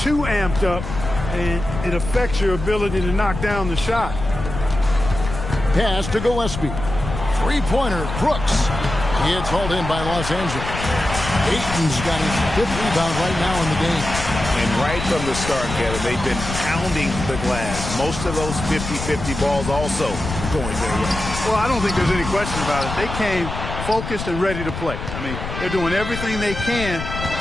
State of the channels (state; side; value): noise; left; rumble, 7 dB below the sound